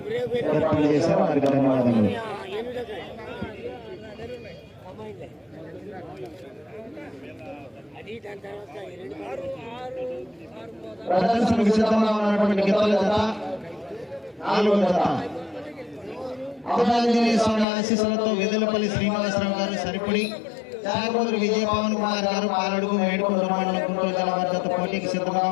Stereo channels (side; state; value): right; drops out; at 17.7 s